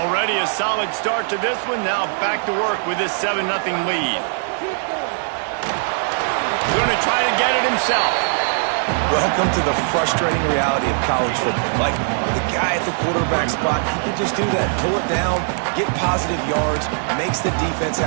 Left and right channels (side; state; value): left; silent; digital silence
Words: a solid start to this one. Now back to work with this 7-0 lead. Going to try to get it himself. Welcome to the frustrating reality of college football. Like, the guy at the quarterback spot, he can just do that. Pull it down, get positive yards, makes the defense